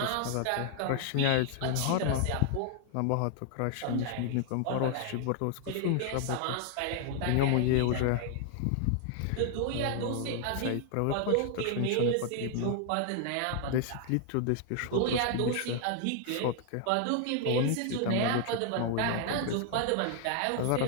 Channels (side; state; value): both; different; correlation 0.00